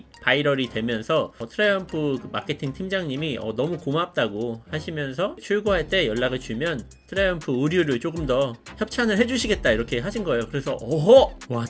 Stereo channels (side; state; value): both; identical; correlation 1.00